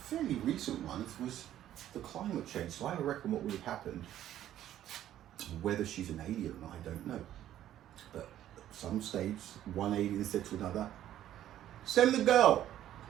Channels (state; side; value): quieter; left; 12.1 dB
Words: recent ones was the climate change. So I reckon what would have happened, whether she's an alien or not, I don't know. But at some stage, one alien said to another, send the girl,